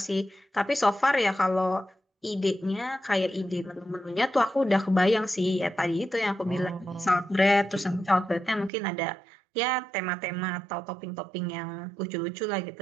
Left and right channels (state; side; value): drops out; left; at 8.7 s